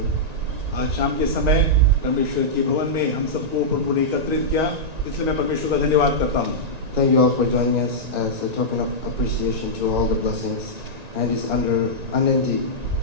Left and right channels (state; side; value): late; left; 1.9 ms